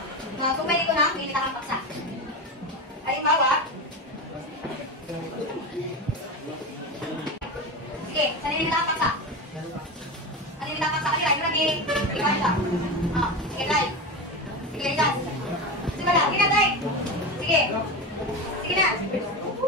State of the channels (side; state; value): both; normal; correlation 0.21